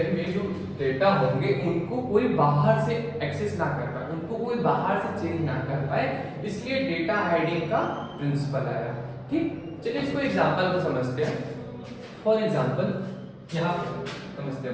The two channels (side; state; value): both; identical; correlation 1.00